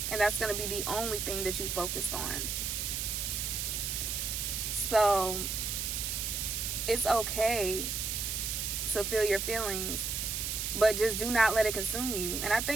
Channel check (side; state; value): right; noise; hiss, 2 dB below the sound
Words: and that's going to be the only thing that you focus on. So it's okay to feel your feelings, but just do not let it consume you. And I